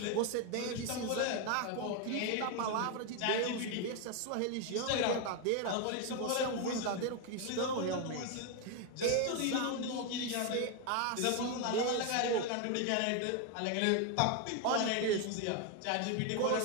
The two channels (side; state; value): both; different; correlation 0.01